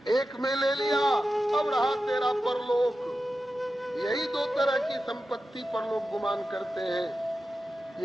एक में ले लिया, अब रहा तेरा परलोक। यही 2 तरह की संपत्ति परलोक गुमान करते हैं।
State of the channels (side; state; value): both; normal; correlation 0.92